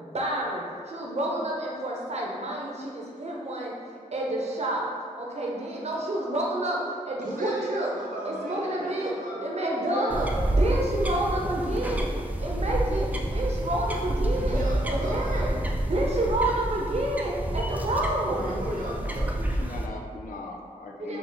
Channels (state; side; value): normal; both; correlation 0.68